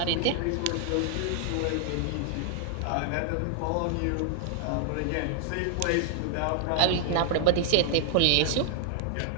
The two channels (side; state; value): both; different; correlation 0.00